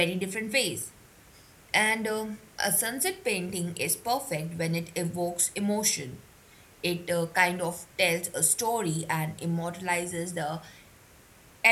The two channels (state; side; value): identical; both; correlation 1.00